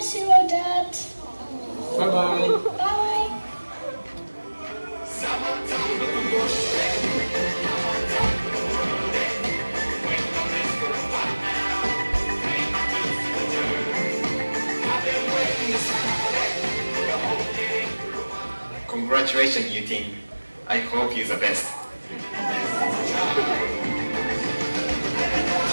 you, Dad. Bye-bye. Bye. Congratulations, you team. I hope you're the best.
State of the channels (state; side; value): inverted; both; correlation -1.00